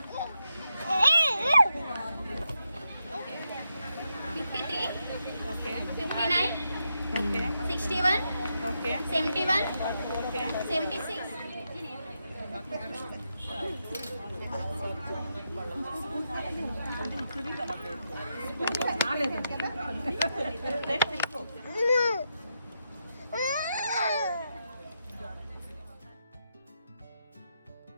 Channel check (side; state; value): both; inverted; correlation -0.84